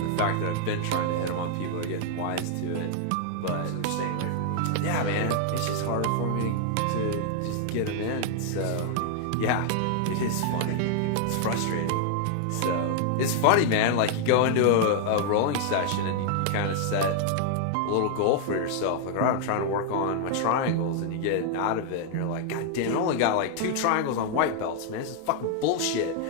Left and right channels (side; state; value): both; different; correlation 0.00